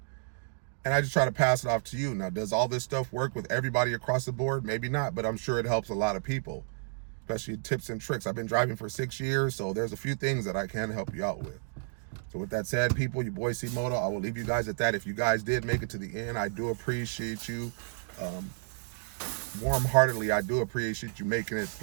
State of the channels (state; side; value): silent; left; digital silence